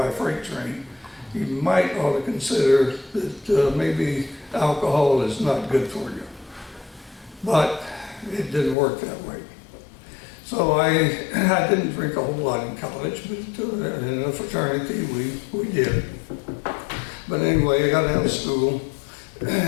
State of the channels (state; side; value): drops out; right; at 8.8 s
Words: a freight train, you might ought to consider that maybe alcohol is not good for you. But it didn't work that way. So I didn't drink a whole lot in college, but in a fraternity we did. But anyway, I got out of school. Like